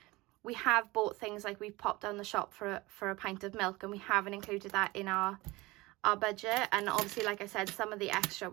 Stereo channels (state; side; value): quieter; left; 21.5 dB